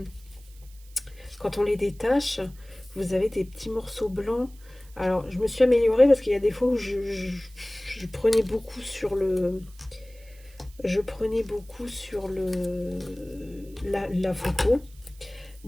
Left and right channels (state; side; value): noise; right; hiss, 26 dB below the sound